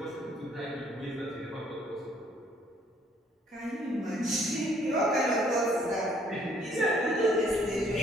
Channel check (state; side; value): normal; both; correlation 0.63